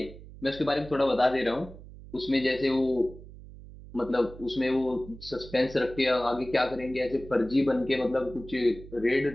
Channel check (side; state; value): right; noise; hum, 17 dB below the sound